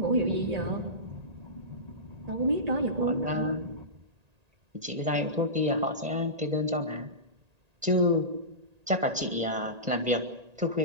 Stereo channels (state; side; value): late; left; 1.8 ms